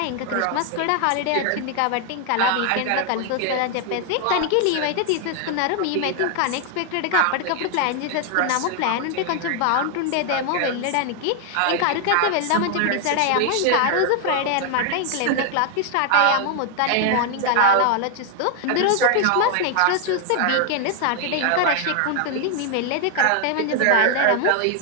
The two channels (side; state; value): both; different; correlation 0.00